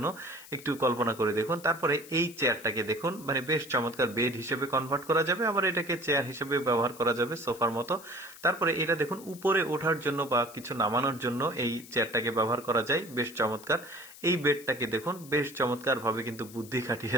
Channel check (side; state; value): left; noise; hiss, 18 dB below the sound